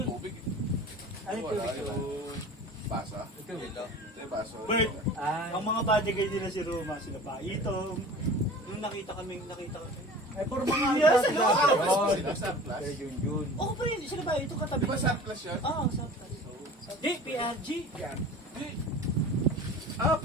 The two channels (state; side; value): normal; both; correlation 0.40